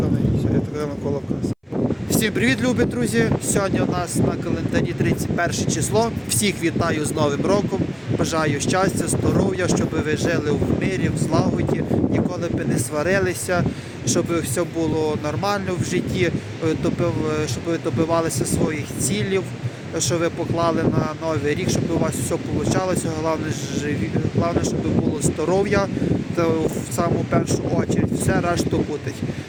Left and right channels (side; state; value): both; identical; correlation 1.00